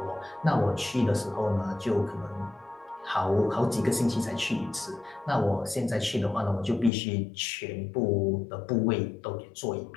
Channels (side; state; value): right; drops out; at 6.9 s